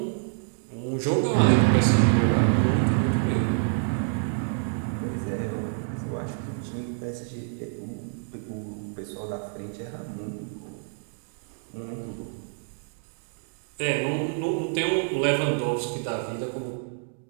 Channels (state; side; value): silent; left; digital silence